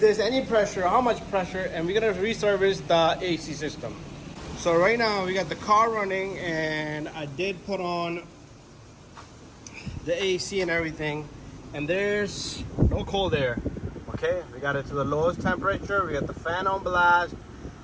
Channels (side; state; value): both; identical; correlation 1.00